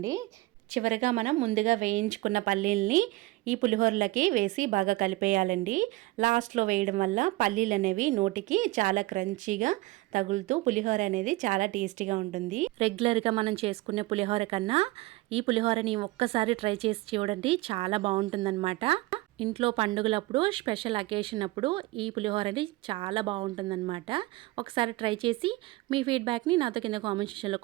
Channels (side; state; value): left; quieter; 20.2 dB